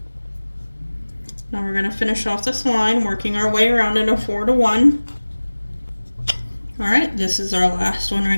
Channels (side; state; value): both; inverted; correlation -1.00